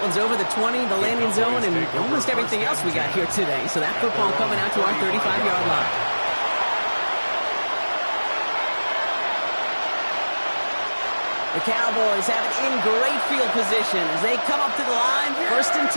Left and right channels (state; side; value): inverted; both; correlation -1.00